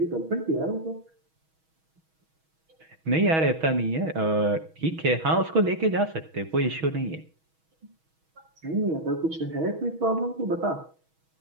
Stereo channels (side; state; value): left; late; 6.3 ms